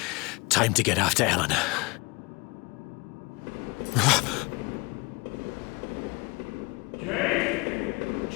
Time to get after Eleanor.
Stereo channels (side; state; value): right; quieter; 26.0 dB